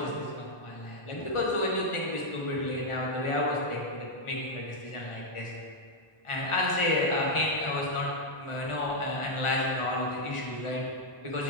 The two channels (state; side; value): late; right; 1.4 ms